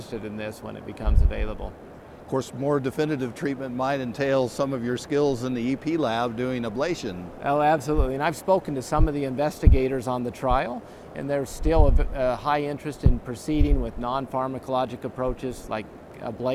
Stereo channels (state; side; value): identical; both; correlation 1.00